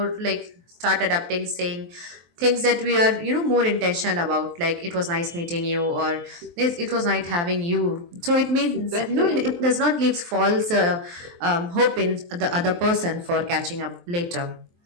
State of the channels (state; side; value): late; left; 23 ms